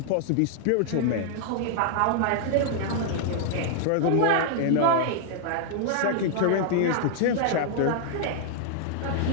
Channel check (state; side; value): different; both; correlation -0.01